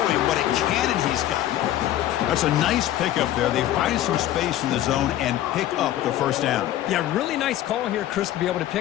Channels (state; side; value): quieter; right; 13.2 dB